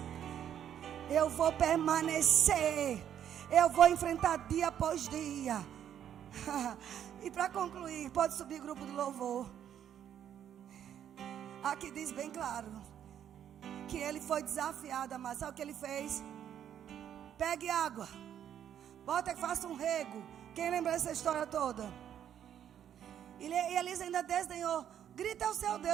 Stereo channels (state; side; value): quieter; left; 9.8 dB